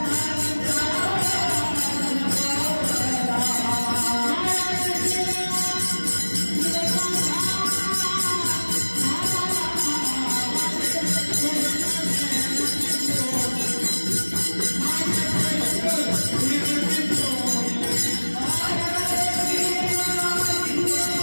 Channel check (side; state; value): both; inverted; correlation -1.00